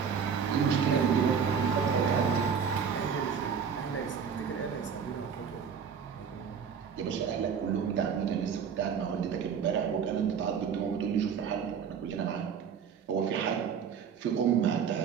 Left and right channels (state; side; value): quieter; left; 6.9 dB